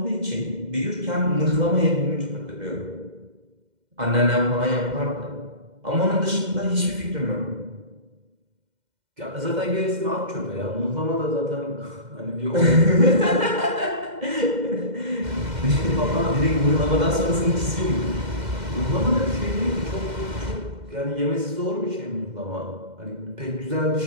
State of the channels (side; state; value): left; late; 2.1 ms